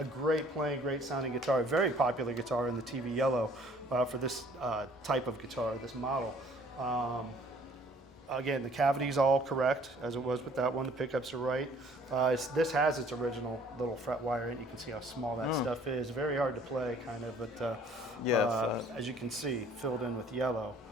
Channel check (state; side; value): normal; both; correlation 0.56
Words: great playing, great sounding guitar. A very popular guitar in the TV Yellow for this type of guitar, this model. Again, the cavity's all correct, as it was with that one. The pickups are right. This has its original little fret wire in it. You can see how small that stuff is. Very hard to play, kind of, but as you can see, filled in with yellow.